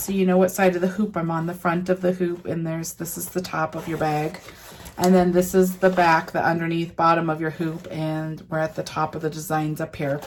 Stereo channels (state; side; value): identical; both; correlation 1.00